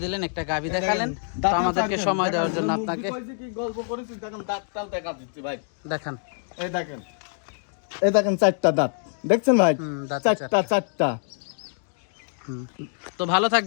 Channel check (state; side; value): silent; right; digital silence